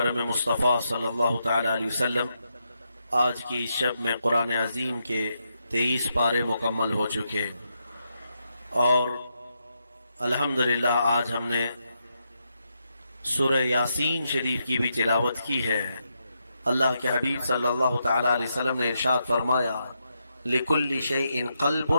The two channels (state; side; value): inverted; both; correlation -0.83